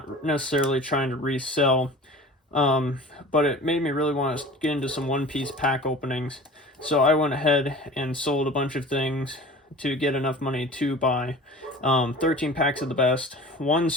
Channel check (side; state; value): both; normal; correlation 0.40